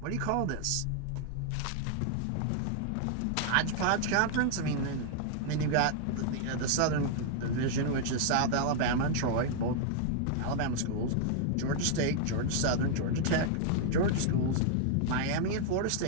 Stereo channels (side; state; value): both; different; correlation 0.00